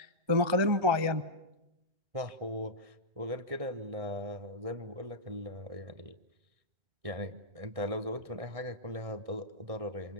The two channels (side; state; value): left; late; 1.3 ms